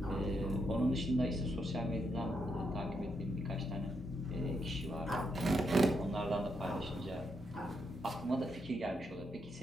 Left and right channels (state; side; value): normal; both; correlation 0.80